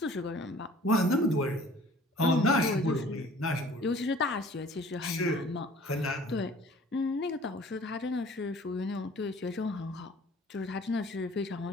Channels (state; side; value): normal; both; correlation 0.51